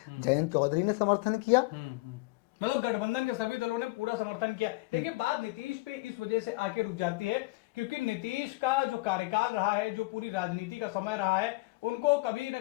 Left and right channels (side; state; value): right; quieter; 22.9 dB